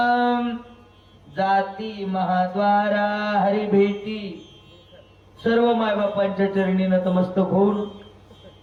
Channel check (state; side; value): identical; both; correlation 1.00